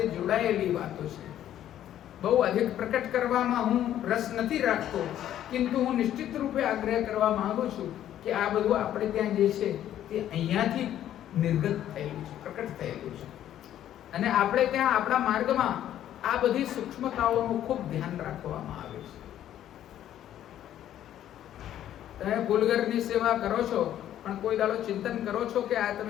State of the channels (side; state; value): right; quieter; 11.6 dB